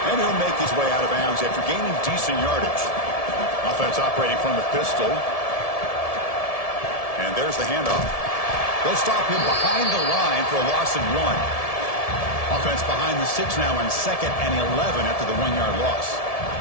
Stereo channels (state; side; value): late; right; 1.7 ms